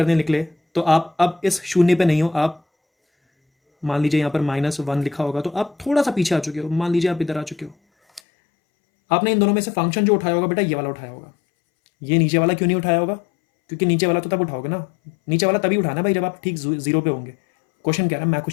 निकले, तो आप अब इस शून्य पे नहीं हो, आप मान लीजिए यहाँ पर -1 लिखा होगा, तो आप थोड़ा सा पीछे आ चुके हो, मान लीजिए आप इधर आ चुके हो। आपने इन दोनों में से फंक्शन जो उठाया होगा बेटा, ये वाला उठाया होगा। ये नीचे वाला क्यों नहीं उठाया होगा, क्योंकि नीचे वाला तो तब उठाओगे ना, नीचे वाला तभी उठाना भाई जब आप ठीक 0 पे होंगे। क्वेश्चन कह रहा है, मैं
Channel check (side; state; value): right; drops out; at 8.2 s